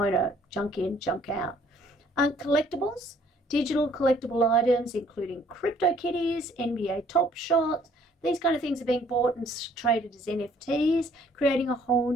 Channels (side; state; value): both; normal; correlation 0.61